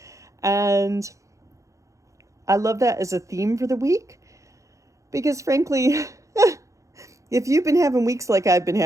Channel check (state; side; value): late; left; 0.15 ms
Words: And I love that as a theme for the week. Because frankly, if you've been having weeks like I've been